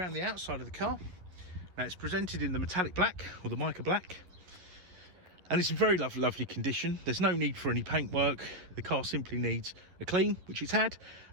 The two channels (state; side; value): late; left; 11 ms